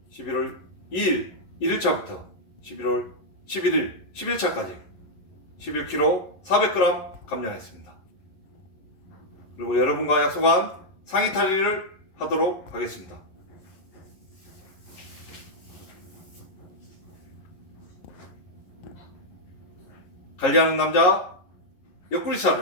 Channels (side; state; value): right; late; 11 ms